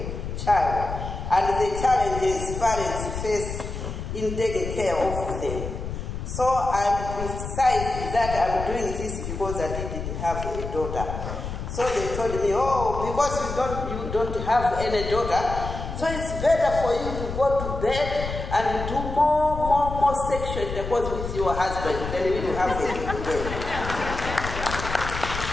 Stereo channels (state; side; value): noise; left; rumble, 6 dB below the sound